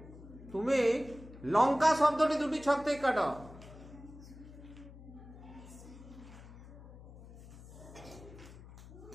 তুমি লঙ্কা শব্দটি দুটি ছক থেকে কাটো।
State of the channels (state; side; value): noise; left; hum, 17 dB below the sound